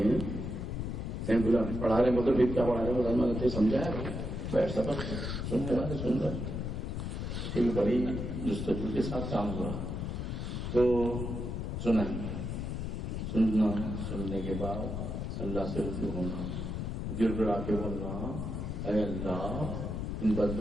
بولا پڑھا رہے مطلب پھر کیا پڑھا رہے بولا میں نے سمجھایا بیٹھ سبق سننے والے سن رہے پھر بڑی جستجو کے ساتھ کام ہوا تو سنا سننا سننے کے بعد اللہ سے رجوع ہونا گر گڑا کے بولنا اے اللہ ان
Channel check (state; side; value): noise; left; rumble, 3 dB below the sound